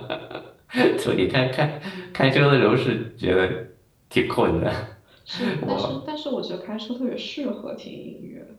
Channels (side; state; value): both; identical; correlation 1.00